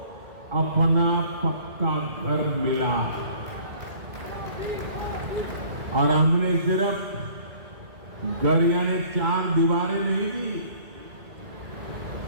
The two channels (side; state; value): left; late; 1.9 ms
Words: अपना पक्का घर मिला। और हमने सिर्फ घर यानी 4 दीवारें नहीं दी,